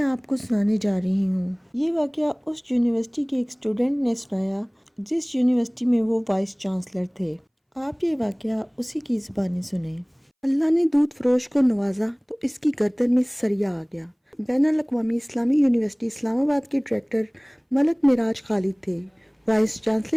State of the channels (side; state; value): both; identical; correlation 1.00